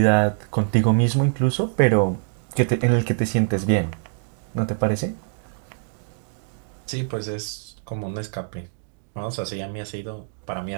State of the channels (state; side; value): silent; left; 58 dB below the other